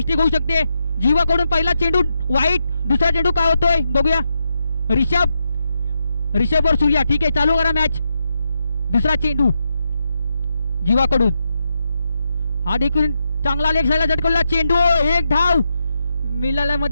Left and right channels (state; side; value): inverted; both; correlation -0.84